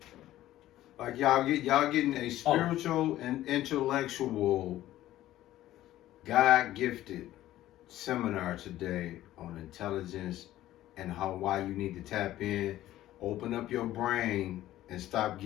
Like y'all getting a spiritual and intellectual, God gifted seminar today on intelligence and why you need to tap in, open up your brain, and stop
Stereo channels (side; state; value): right; quieter; 14.2 dB